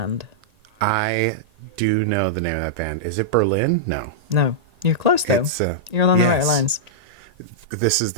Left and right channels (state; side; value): late; left; 1.8 ms